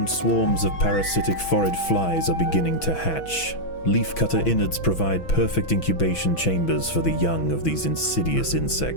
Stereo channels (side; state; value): right; late; 6.1 ms